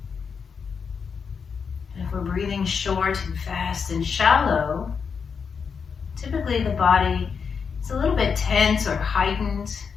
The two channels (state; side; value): quieter; right; 6.0 dB